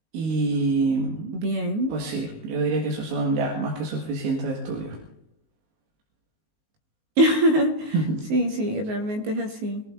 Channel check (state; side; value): late; left; 19 ms